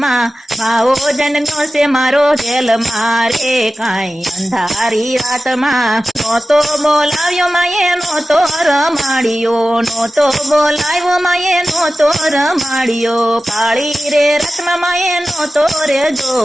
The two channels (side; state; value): both; normal; correlation 0.95